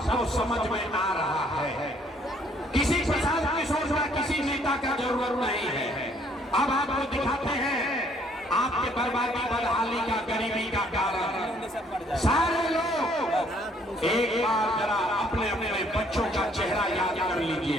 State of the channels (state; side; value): normal; both; correlation 0.63